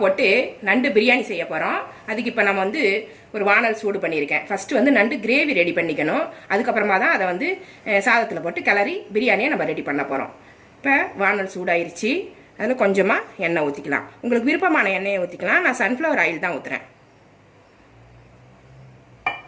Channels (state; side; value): identical; both; correlation 1.00